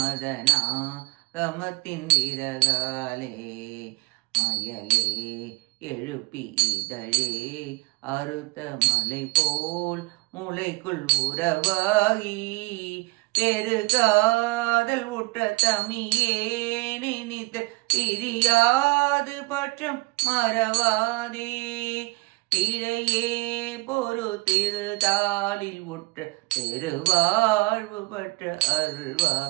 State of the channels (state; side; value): quieter; left; 25.3 dB